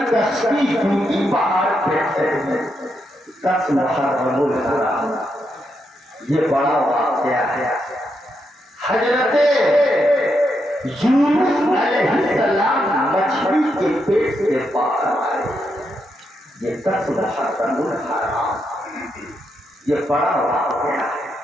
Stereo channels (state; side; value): normal; both; correlation 0.81